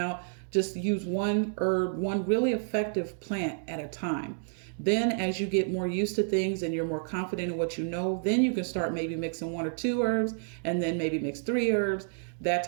Just use one herb, one really effective plant at a time. Then as you get more used to things and you're more confident in what you know, then you can start maybe mixing 1 or 2 herbs, and then maybe mix 3 herbs, that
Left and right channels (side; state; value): left; silent; digital silence